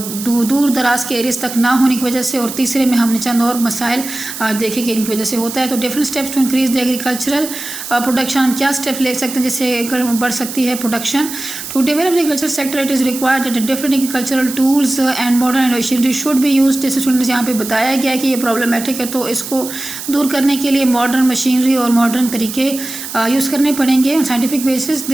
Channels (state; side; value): noise; right; hiss, 9 dB below the sound